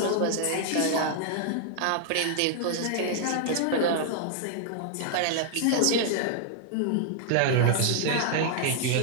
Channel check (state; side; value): different; both; correlation 0.00